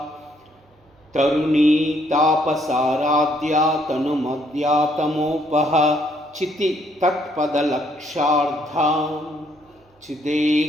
तरुणी तापसाराध्या तनुमद्या तमोपह चिति तत्पदलक्षार्धा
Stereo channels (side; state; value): both; normal; correlation 0.69